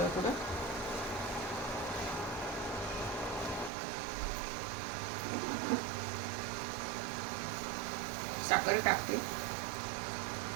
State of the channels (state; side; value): drops out; left; at 3.7 s